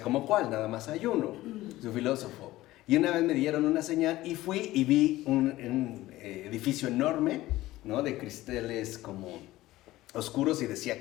¿cómo cuál? Nada más hay uno, su filósofo. Y una vez me dieron una señal y fui y vi un edificio enorme, ¿no?, de cristales como oscuros y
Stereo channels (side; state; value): right; quieter; 16.9 dB